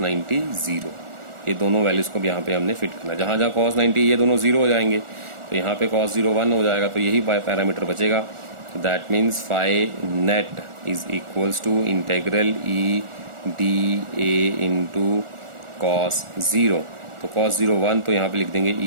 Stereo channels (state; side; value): late; left; 1.4 ms